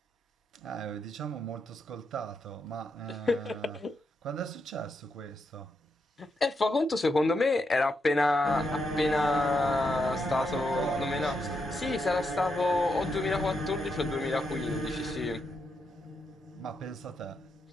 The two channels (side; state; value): both; normal; correlation 0.82